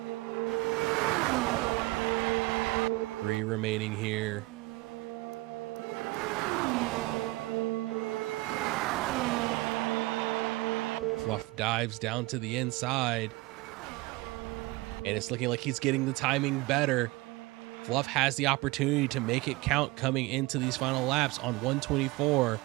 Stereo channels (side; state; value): left; quieter; 21.6 dB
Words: Three remaining here. Fluff dives down to the inside, and it's looking like he's getting the timing better. Fluff has the opportunity to make it count coming into these final laps on 124.